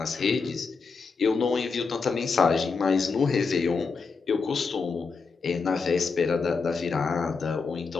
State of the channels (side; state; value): right; quieter; 4.8 dB